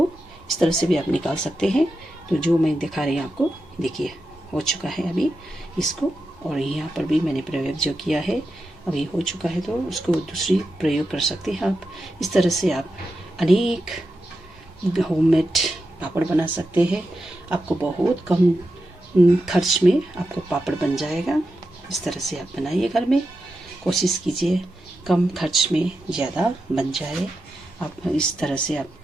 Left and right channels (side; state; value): both; normal; correlation 0.89